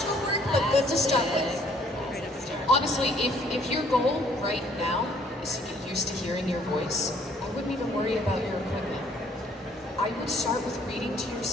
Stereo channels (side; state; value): both; normal; correlation 0.62